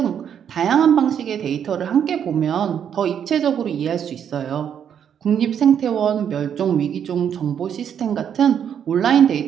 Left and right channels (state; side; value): quieter; left; 8.6 dB